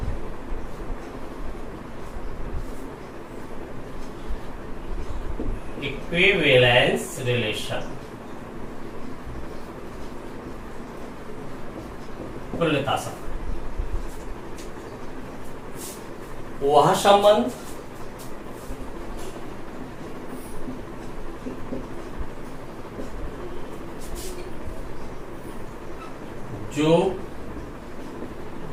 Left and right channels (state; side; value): identical; both; correlation 1.00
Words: Equivalence relation. तुल्यता संबंध वह संबंध जो